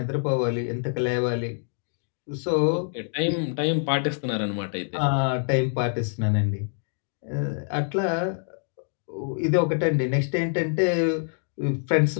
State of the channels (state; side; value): silent; right; 61 dB below the other